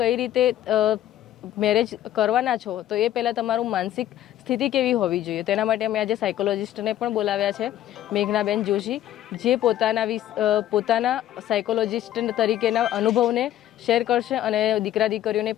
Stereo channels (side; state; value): right; quieter; 12.5 dB